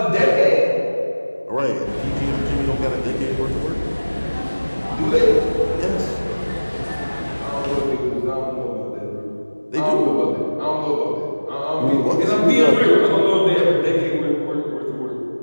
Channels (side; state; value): both; inverted; correlation -1.00